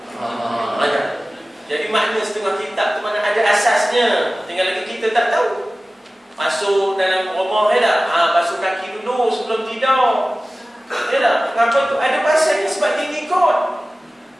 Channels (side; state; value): both; normal; correlation 0.96